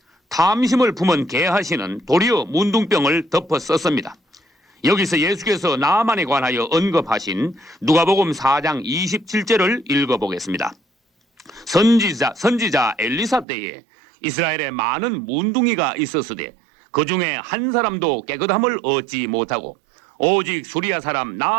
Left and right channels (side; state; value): left; drops out; at 13.5 s